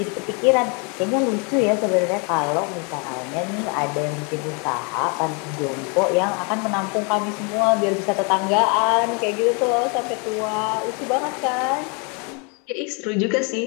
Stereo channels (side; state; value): right; quieter; 34.4 dB